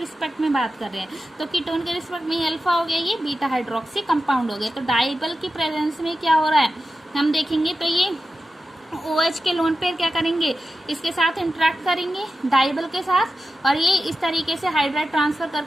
में बात कर रहे हैं, तो कीटोन के रिस्पेक्ट में ये अल्फा हो गया, ये बीटा हाइड्रोक्सी कंपाउंड हो गया। तो डाइबल की प्रेजेंस में क्या हो रहा है, हम देखेंगे तो ये OH के लोन पेयर क्या करेंगे, इसके साथ इंटरेक्ट करेंगे डाइबल के साथ, और ये इस तरीके से हाइड्राइड ट्रांसफर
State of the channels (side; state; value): both; normal; correlation 0.92